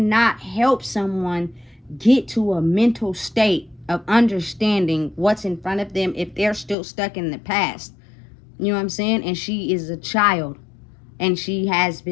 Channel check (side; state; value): right; drops out; at 6.8 s